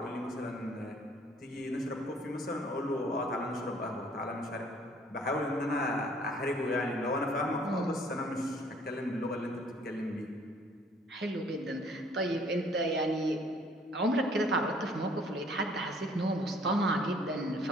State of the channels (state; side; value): normal; both; correlation 0.58